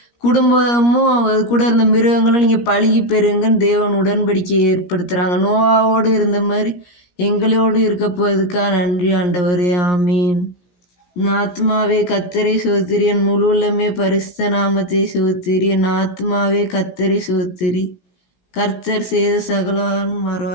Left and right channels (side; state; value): right; late; 17 ms